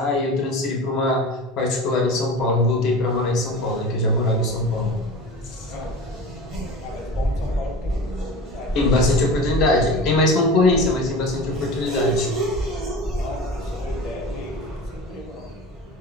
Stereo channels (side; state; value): both; normal; correlation 0.34